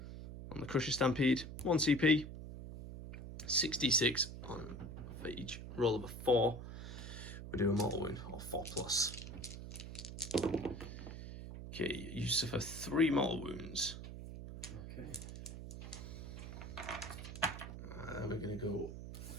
on the Crusher Stampede. 1 CP, 66 on for each roll of a 4. We do a mortal wound or 4+. Okay, you suffer 3 mortal wounds. Okay. We're going to go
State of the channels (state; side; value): noise; right; hum, 9 dB below the sound